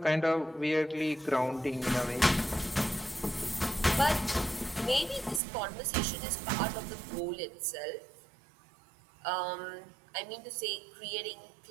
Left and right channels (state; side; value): drops out; left; at 5.4 s